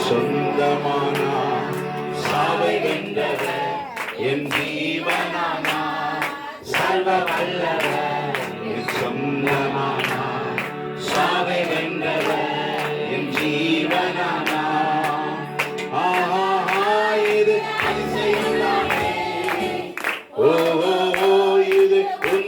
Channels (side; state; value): both; identical; correlation 1.00